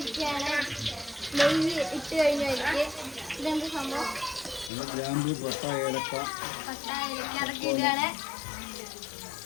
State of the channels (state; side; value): drops out; right; at 4.7 s